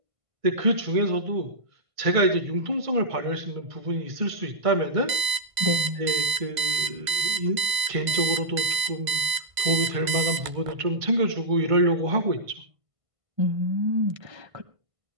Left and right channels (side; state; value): left; late; 1.5 ms